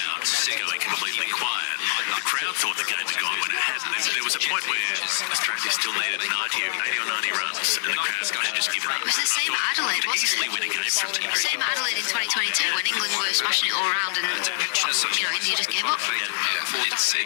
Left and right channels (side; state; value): right; silent; digital silence